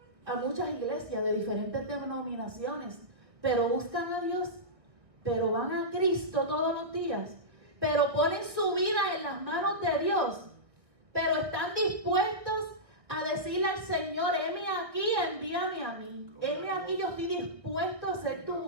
A muchas iglesias de diferentes denominaciones, pero buscan a Dios, pero van a Cristo todos los días, pero ponen su vida en las manos de Dios, pero están dispuestos a decirle al Señor, heme aquí, envíame a mí. Heme aquí, yo estoy dispuesto a hacer tu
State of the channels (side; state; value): left; late; 1.7 ms